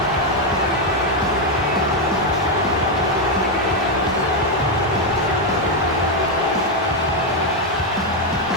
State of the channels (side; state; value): left; noise; rumble, 23 dB below the sound